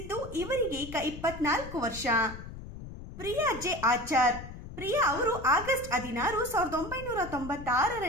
ಇವರಿಗೆ ಈಗ 24 ವರ್ಷ. ಪ್ರಿಯಾ ಜೆ ಆಚಾರ್. ಪ್ರಿಯಾ ಅವರು ಆಗಸ್ಟ್ 16,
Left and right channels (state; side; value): noise; left; rumble, 12 dB below the sound